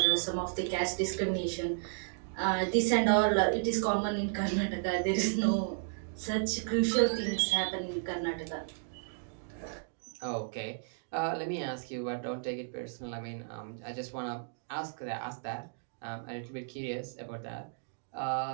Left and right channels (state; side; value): silent; left; digital silence